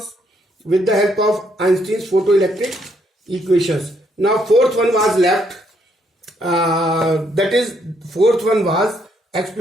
with the help of Einstein's photoelectric equations. Now fourth one was left. That is, fourth one was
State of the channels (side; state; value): both; normal; correlation 0.72